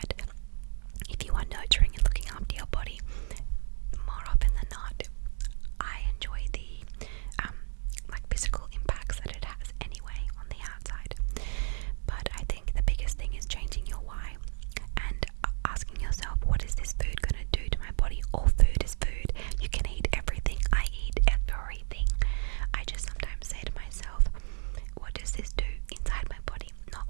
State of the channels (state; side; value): silent; left; digital silence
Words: if you are nurturing and looking after your body, more often than not, I enjoy the physical impacts that it has anyway on the outside. But I think the biggest thing is changing your why and asking yourself, what is this food going to do to my body? All food is food. You can eat everything. I eat everything. I just sometimes say to myself, what does this do inside my body? Not